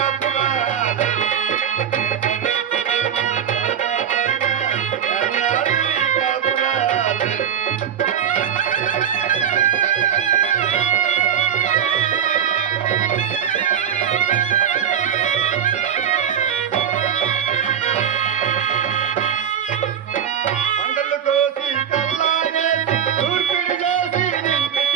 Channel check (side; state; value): left; quieter; 8.7 dB